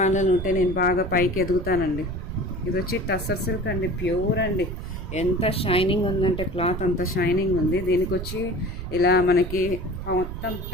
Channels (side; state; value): right; noise; rumble, 7 dB below the sound